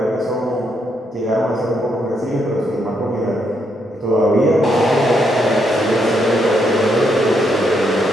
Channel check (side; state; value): both; normal; correlation 0.77